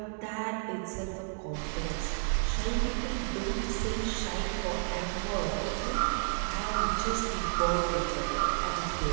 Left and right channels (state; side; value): silent; left; 57 dB below the other